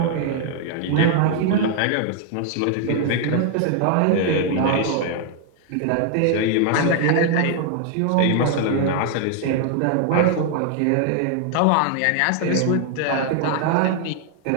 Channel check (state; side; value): different; both; correlation 0.00